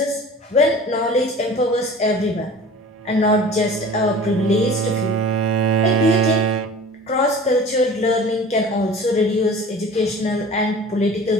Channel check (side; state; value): both; normal; correlation 0.41